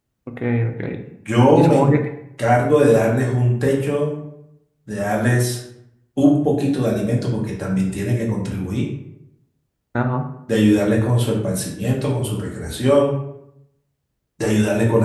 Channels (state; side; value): identical; both; correlation 1.00